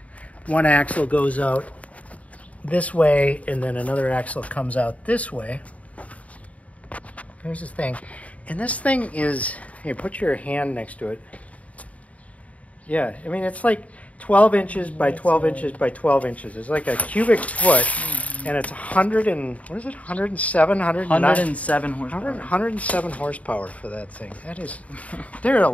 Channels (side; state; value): right; late; 0.068 ms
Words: one axle goes out this way, and then another axle comes out this way. Here's this thing. And this thing is, here, put your hand next to it. Yeah, I mean, it's like 12 inches by 12 inches by 12 inches. It's like a cubic foot, and it's 100 and, what is it, 107, 107 horsepower. 107 horsepower for that thing. That is, there are a